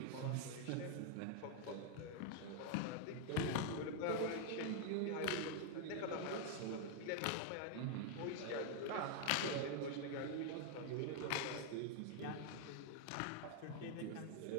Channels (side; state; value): both; different; correlation 0.00